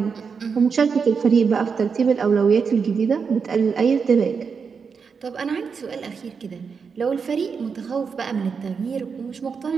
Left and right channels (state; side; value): quieter; left; 5.8 dB